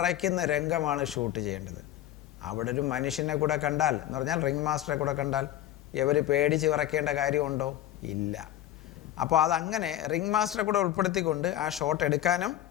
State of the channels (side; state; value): right; quieter; 12.7 dB